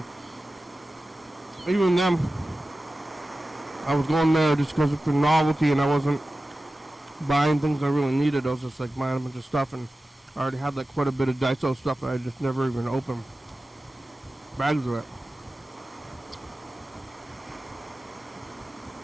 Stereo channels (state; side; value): normal; both; correlation 0.95